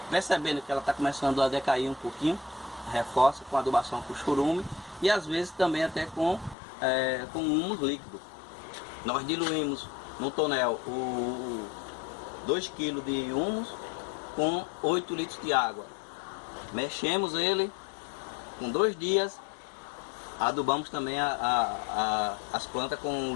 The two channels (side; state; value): right; drops out; at 6.6 s